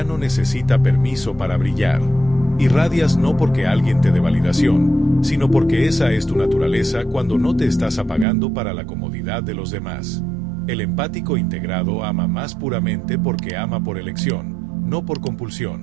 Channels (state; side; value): drops out; left; at 8.2 s